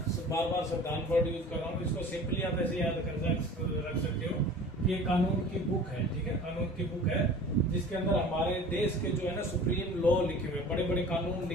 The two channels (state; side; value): normal; both; correlation 0.42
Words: बार बार संविधान वर्ड यूज कर रहा हूँ, इसको सिंपली आप ऐसे याद कर रख सकते हो कि ये कानून की बुक है। ठीक है, कानून की बुक है जिसके अंदर हमारे देश के जो है ना सुप्रीम लॉ लिखे हुए हैं, बड़े बड़े कानून